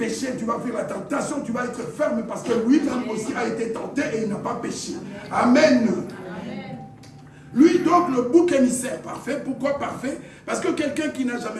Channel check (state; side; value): identical; both; correlation 1.00